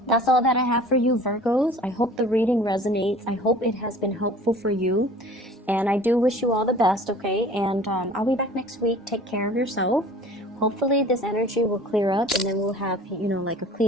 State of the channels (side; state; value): both; normal; correlation 0.46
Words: that's all that I have for you, Virgos. I hope the reading resonates. I hope it has been helpful for you. And I do wish you all the best, okay? And I'll be back next week. Take care of yourself. Hopefully this energy will clear up, and then we'll have, you know, like a